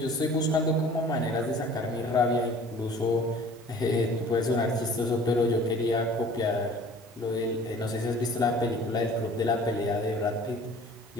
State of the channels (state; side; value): normal; both; correlation 0.48